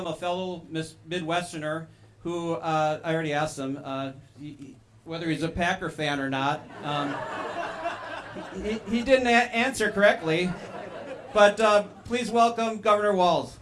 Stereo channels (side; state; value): both; identical; correlation 1.00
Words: a fellow Midwesterner who I already asked him whether he's a Packer fan or not. He didn't answer correctly, but please welcome Governor Walz.